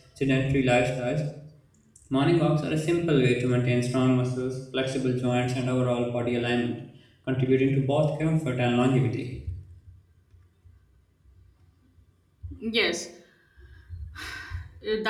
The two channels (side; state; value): both; identical; correlation 1.00